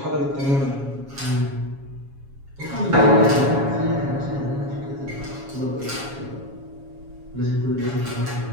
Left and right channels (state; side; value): late; left; 7.2 ms